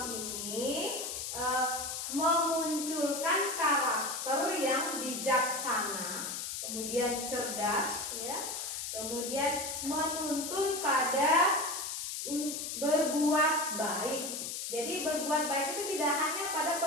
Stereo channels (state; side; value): noise; left; hiss, 4 dB below the sound